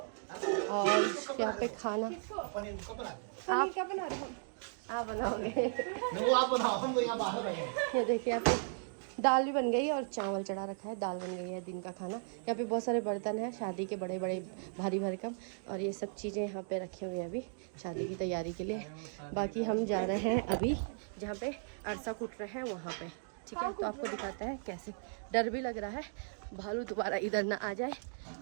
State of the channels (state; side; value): silent; left; digital silence